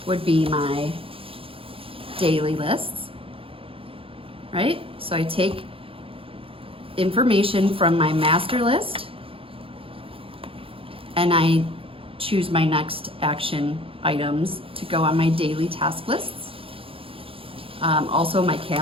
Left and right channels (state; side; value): late; left; 0.27 ms